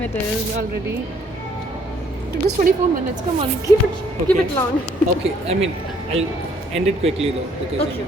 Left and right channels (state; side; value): normal; both; correlation 0.64